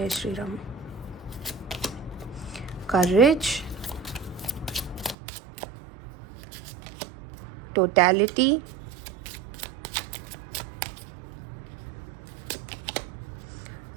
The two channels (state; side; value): drops out; left; at 5.2 s